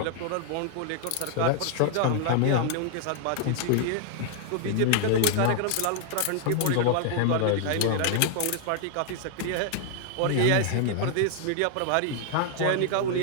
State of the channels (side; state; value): both; different; correlation 0.00